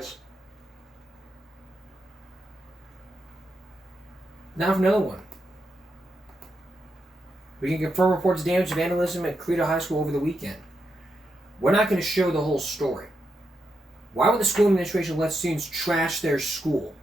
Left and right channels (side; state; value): both; normal; correlation 0.84